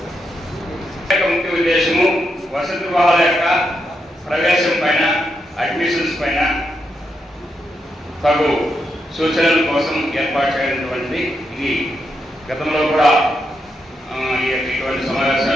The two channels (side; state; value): both; normal; correlation 0.83